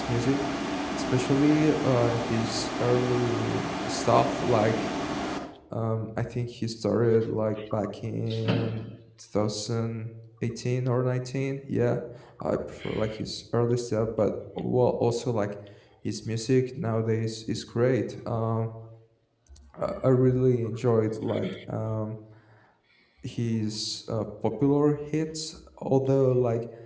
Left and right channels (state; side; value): identical; both; correlation 1.00